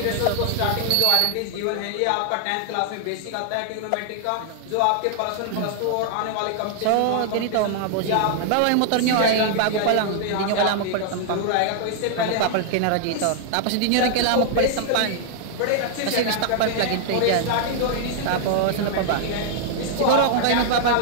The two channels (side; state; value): both; different; correlation -0.01